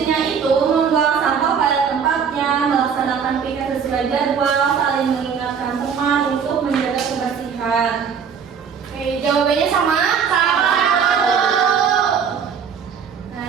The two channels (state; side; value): quieter; left; 6.9 dB